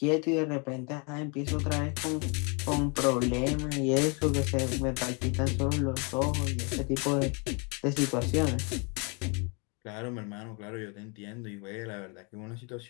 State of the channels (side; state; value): right; quieter; 33.9 dB